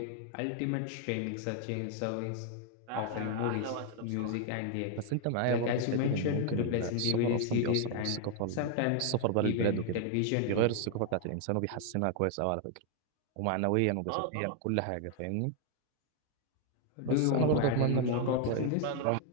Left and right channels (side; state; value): both; different; correlation 0.00